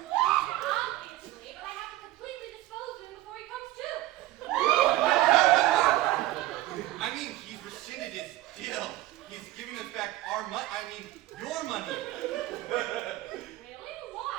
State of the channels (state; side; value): quieter; left; 16.4 dB